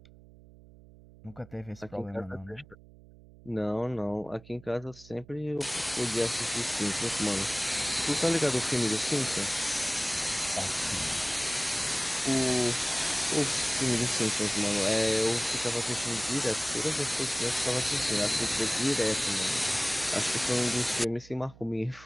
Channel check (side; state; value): right; noise; hum, 22 dB below the sound